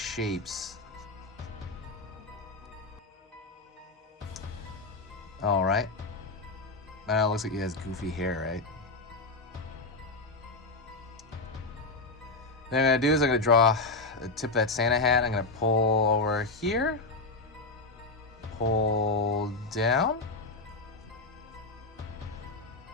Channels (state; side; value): quieter; right; 3.4 dB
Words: Alright. Now it looks like he has goofy hair, right? Then what I'm going to do is I'm going to draw the tip of that Santa hat. I'm going to pull over here. Pull down.